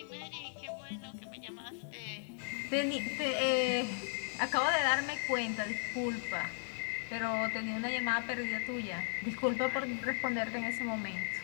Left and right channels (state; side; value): silent; right; digital silence